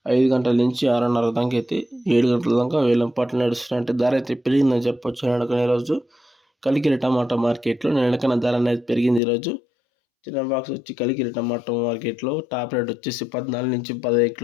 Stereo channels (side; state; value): right; drops out; at 9.2 s